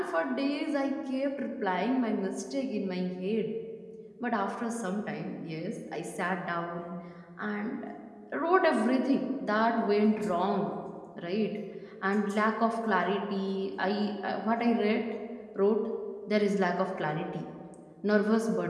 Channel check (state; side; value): identical; both; correlation 1.00